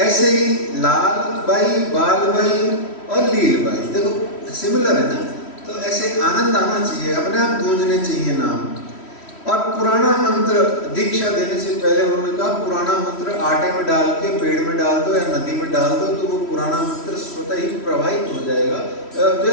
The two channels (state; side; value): late; right; 3.1 ms